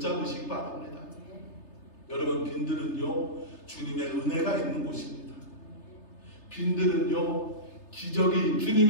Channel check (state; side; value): late; right; 3.3 ms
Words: 바랍니다. 여러분, 빈들은요, 주님의 은혜가 있는 곳입니다. 빈들은요,